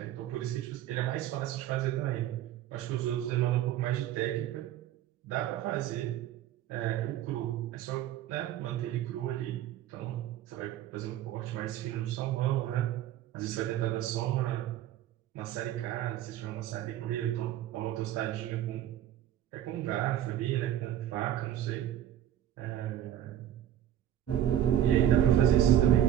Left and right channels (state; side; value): quieter; left; 11.7 dB